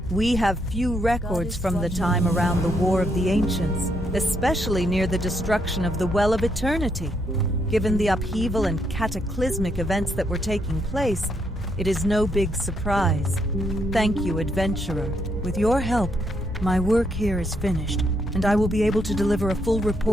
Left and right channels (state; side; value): normal; both; correlation 0.76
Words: We have few records from the time around the War of the Ancients, especially near the destruction of the Well of Eternity. Given the upheaval and cataclysmic events that were taking place, it is no big surprise. Thank you, adventurer. With your help, my work here is finished, and I will be able to deliver a full